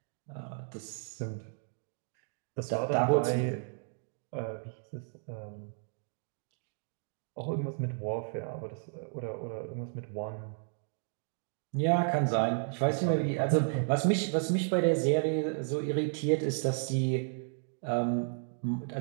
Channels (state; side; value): silent; left; 56 dB below the other